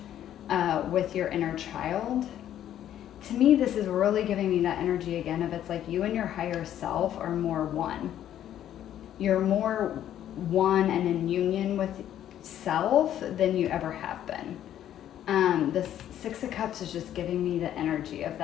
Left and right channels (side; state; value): right; quieter; 11.2 dB